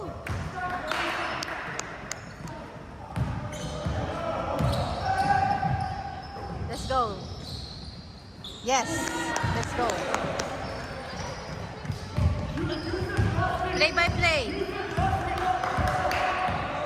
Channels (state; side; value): identical; both; correlation 1.00